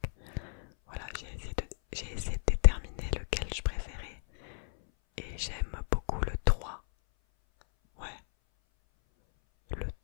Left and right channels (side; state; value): right; silent; 56 dB below the other